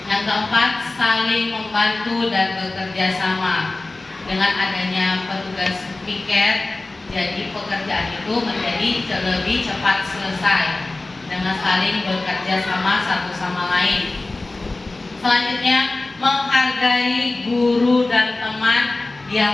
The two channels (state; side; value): quieter; right; 3.1 dB